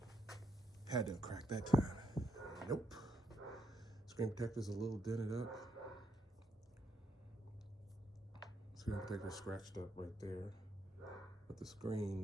Had to crack that time. Nope. Screen protector's a little dented up. Screen protector scratched up right there. But the screen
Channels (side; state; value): both; normal; correlation 0.77